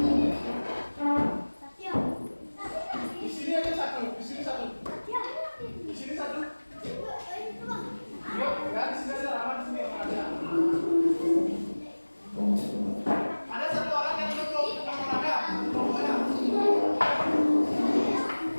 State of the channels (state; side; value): inverted; both; correlation -1.00